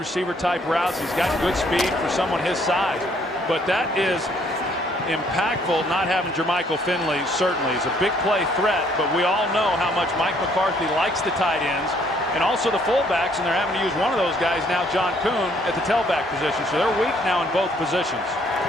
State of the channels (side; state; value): both; normal; correlation 0.65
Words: type routes. He's got good speed for someone his size. But that is impactful not having Jermichael Finley. Certainly, he's a big play threat, but we all know how much Mike McCarthy likes the tight ends and also the fullbacks, and they're having to use one of those guys now, John Kuhn, at the tailback position. So they're weak now in both positions.